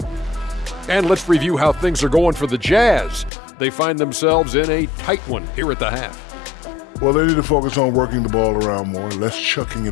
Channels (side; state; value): right; drops out; at 3.3 s